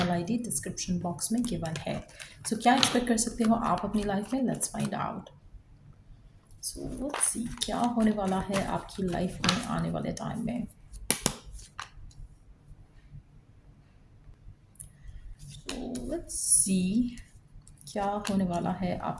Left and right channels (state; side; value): identical; both; correlation 1.00